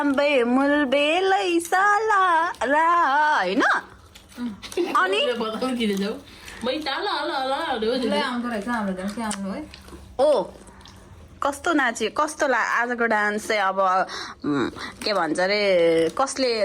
मुलबेलै साला रा होइन अनि आउँदो रहेछ हाम्रो झन् के आउनु है ओ कस्तो नाच्यो कस्तो आजको डान्स चाहिँ अब के भन्छ अरे कसले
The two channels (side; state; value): both; identical; correlation 1.00